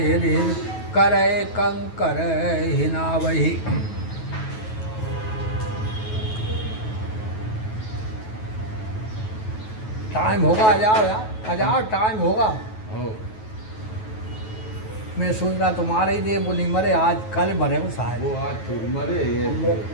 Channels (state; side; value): late; right; 9.3 ms